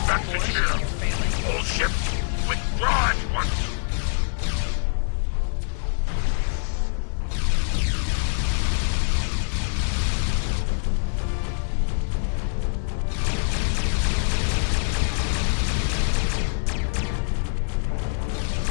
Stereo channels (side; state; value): right; silent; 62 dB below the other